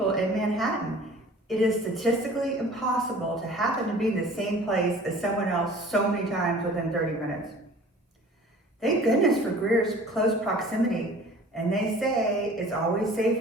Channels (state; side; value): normal; both; correlation 0.47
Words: in Manhattan. It is statistically impossible to happen to be in the same place as someone else so many times within 30 minutes. Thank goodness for Grier's close proximity, and they say it's always